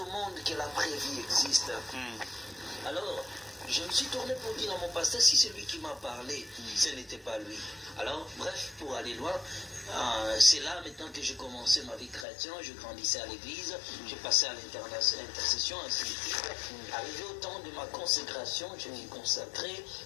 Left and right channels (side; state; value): right; drops out; at 12.2 s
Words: monde que la vraie vie existe. Alors, je me suis tourné pour dire à mon pasteur, si c'est lui qui m'a parlé, ce n'était pas lui. Alors, bref, pour aller loin, c'est là maintenant que j'ai commencé ma vie chrétienne, je grandissais à l'église, j'ai passé à l'intercession, ainsi de suite. Arrivé au temps de ma consécration, je m'y consacrais,